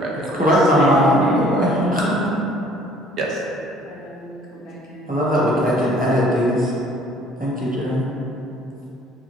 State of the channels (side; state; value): both; normal; correlation 0.56